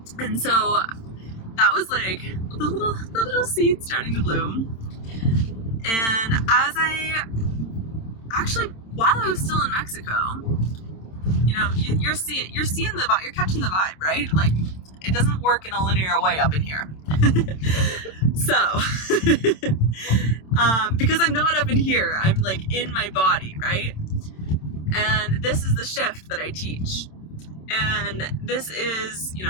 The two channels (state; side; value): late; right; 27 ms